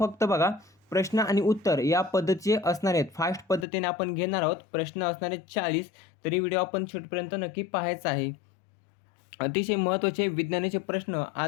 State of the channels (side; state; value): right; drops out; at 3.7 s